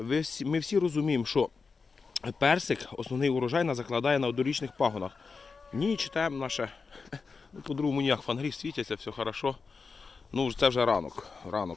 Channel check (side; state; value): right; quieter; 4.8 dB